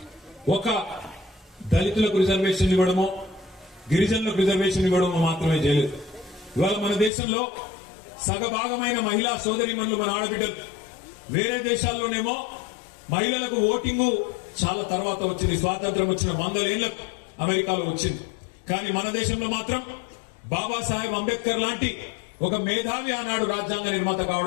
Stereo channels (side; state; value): right; drops out; at 7.1 s